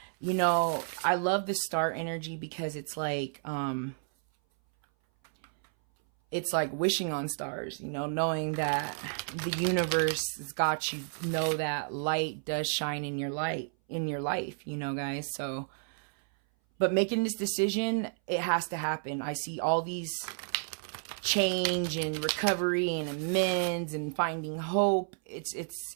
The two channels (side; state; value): left; silent; 57 dB below the other